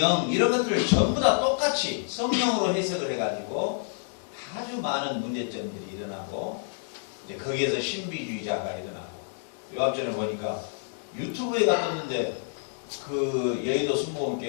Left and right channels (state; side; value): silent; right; digital silence